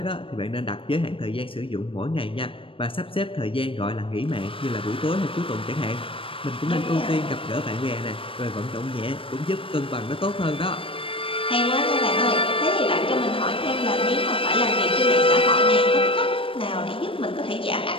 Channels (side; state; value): right; late; 0.26 ms